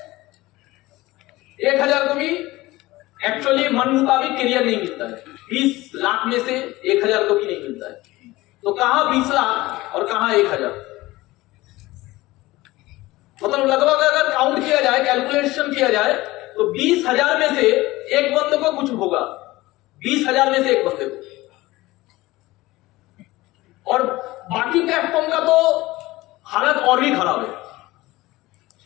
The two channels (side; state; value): right; quieter; 19.0 dB